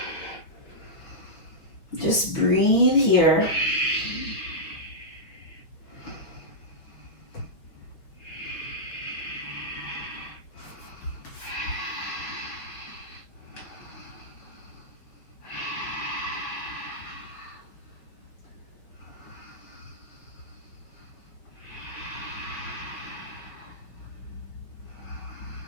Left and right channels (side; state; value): right; late; 5.5 ms